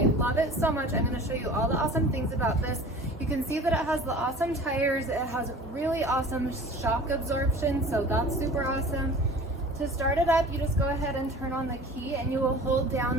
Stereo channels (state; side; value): normal; both; correlation 0.42